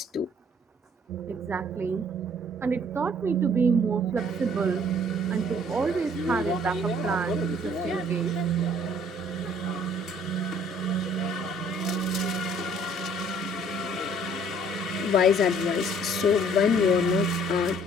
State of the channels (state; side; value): normal; both; correlation 0.59